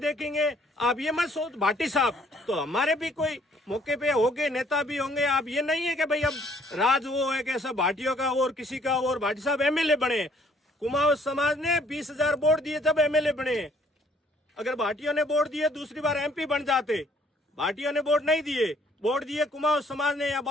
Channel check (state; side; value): normal; both; correlation 0.62